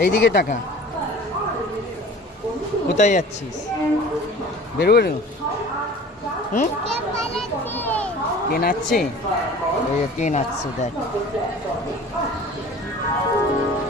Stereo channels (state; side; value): normal; both; correlation 0.43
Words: এইদিকে টাকা। কোথায় যাচ্ছিস? বেরো বেরো। হুম, কে নাচছে? ওই কে নাচছে দেখ।